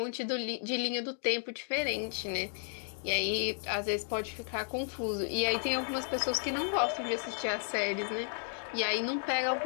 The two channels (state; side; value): silent; right; 56 dB below the other